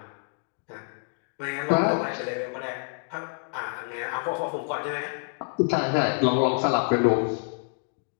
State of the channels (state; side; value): silent; right; 56 dB below the other